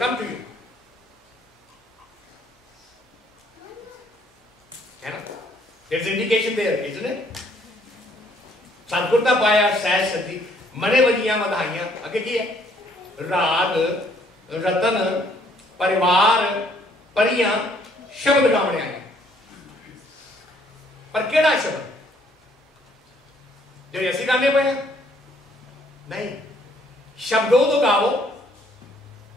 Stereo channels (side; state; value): both; normal; correlation 0.65